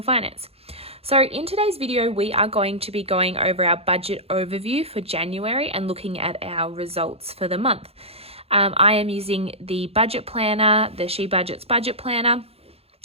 finance. So in today's video, we are going to be going over our budget overview for January and looking at our results for the month. I am using the budget planner, the She Budgets budget planner.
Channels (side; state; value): left; late; 0.29 ms